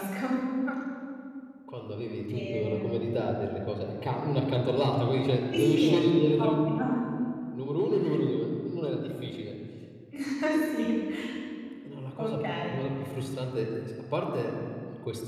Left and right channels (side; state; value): both; identical; correlation 1.00